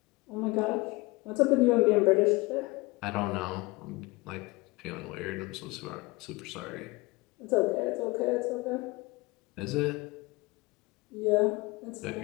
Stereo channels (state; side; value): quieter; right; 23.6 dB